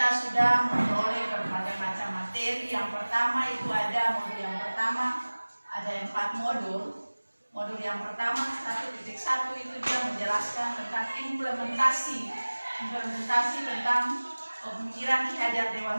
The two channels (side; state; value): both; inverted; correlation -1.00